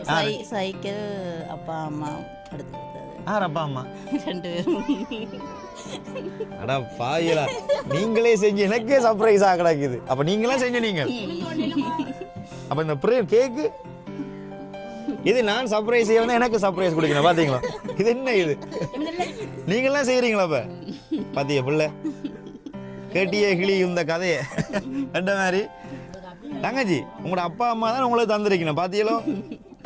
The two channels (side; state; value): both; identical; correlation 1.00